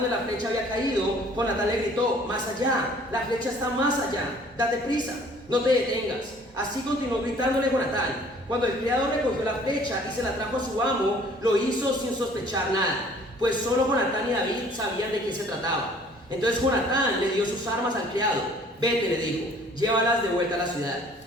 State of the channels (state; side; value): normal; both; correlation 0.54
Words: la flecha había caído, Jonatán le gritó: más allá, la flecha está más allá, date prisa, no te detengas. Así continuó gritándole Jonatán. Cuando el criado recogió la flecha y se la trajo a su amo, lo hizo sin sospechar nada, pues solo Jonatán y David sabían de qué se trataba. Entonces Jonatán le dio sus armas al criado. Vete, le dijo, llévalas de vuelta a la ciudad.